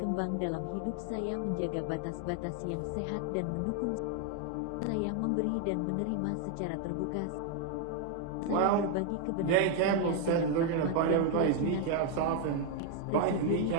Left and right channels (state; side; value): different; both; correlation 0.00